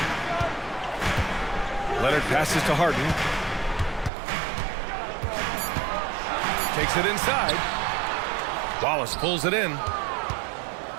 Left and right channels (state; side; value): drops out; left; at 4.1 s